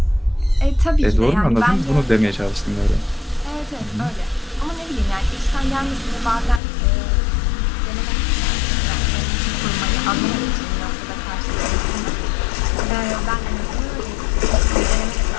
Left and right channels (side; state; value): right; drops out; at 6.6 s